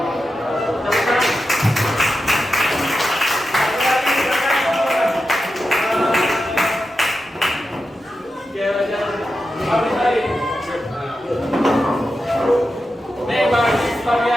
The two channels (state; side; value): normal; both; correlation 0.90